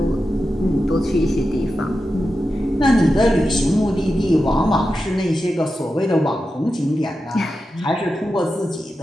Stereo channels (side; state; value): both; normal; correlation 0.91